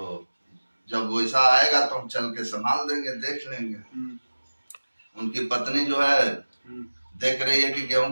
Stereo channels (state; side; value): inverted; both; correlation -1.00